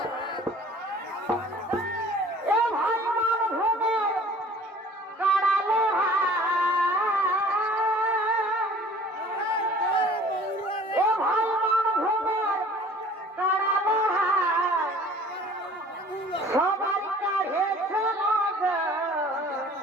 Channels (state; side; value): normal; both; correlation 0.49